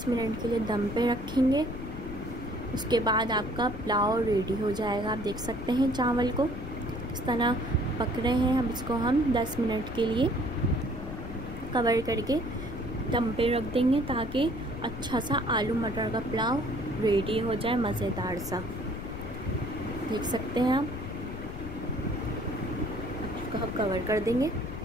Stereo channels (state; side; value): noise; left; rumble, 9 dB below the sound